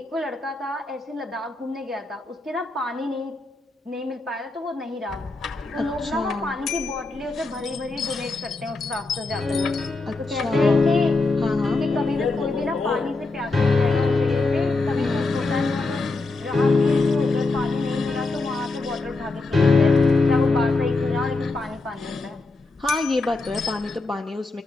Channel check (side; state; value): right; quieter; 3.4 dB